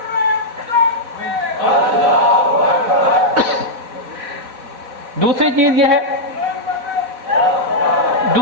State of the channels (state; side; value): late; left; 4.1 ms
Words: دوسری چیز یہ ہے،